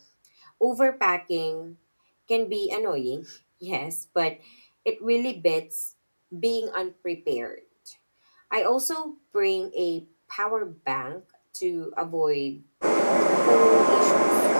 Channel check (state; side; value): inverted; both; correlation -1.00